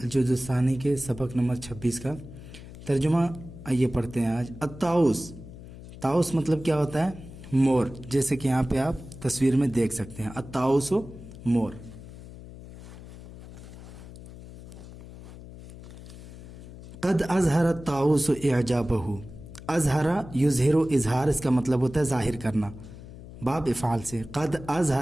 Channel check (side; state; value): left; noise; hum, 15 dB below the sound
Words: الثانی کے سبق نمبر 26 کا ترجمہ آئیے پڑھتے ہیں آج۔ الطاؤس، طاؤس مطلب کیا ہوتا ہے؟ مور، جیسے کہ یہاں پہ آپ تصویر میں دیکھ سکتے ہیں، الطاؤس و مور۔ قد اظہر الطاؤس اعجابہ، اظہر یظہر، اظہار اس کا مطلب ہوتا ہے ظاہر کرنا، باب افعال سے۔ قد